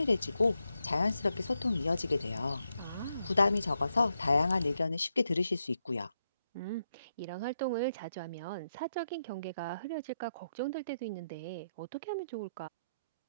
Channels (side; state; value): both; inverted; correlation -0.83